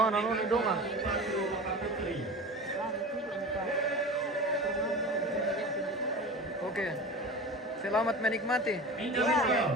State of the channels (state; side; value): normal; both; correlation 0.32